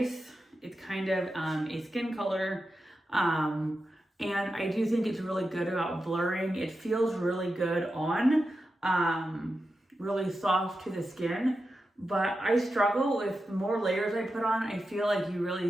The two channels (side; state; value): both; normal; correlation 0.90